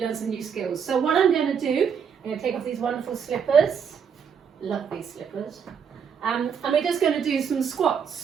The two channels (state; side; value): quieter; left; 7.1 dB